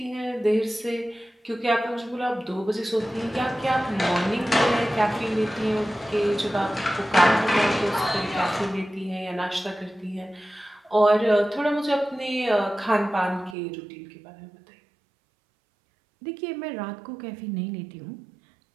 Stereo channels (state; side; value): drops out; left; at 13.6 s